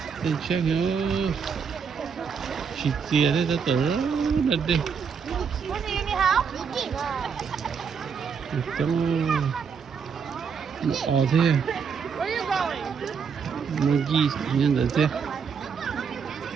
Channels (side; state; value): left; quieter; 6.3 dB